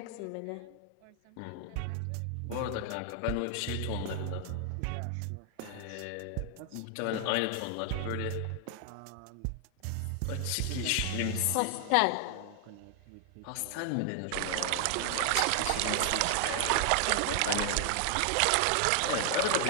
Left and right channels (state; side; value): different; both; correlation 0.00